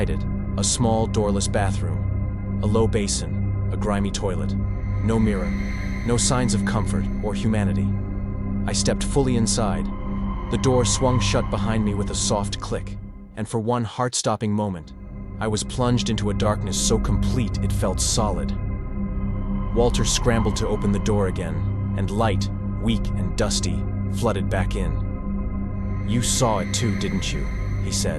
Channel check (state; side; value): identical; both; correlation 1.00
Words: it, a small doorless bathroom, a low basin, a grimy toilet. No mirror, no signs of comfort or humanity. I stepped fully inside. The door swung shut behind me with a soft click, and for one heart-stopping moment, I was plunged into a darkness so complete it felt solid. Walter scrambled to open the door again, and light, weak and dusty, flooded back in. "You saw it too, didn't you?" he